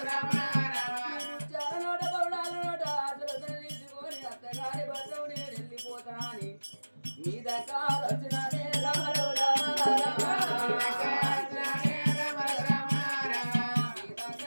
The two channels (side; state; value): both; inverted; correlation -1.00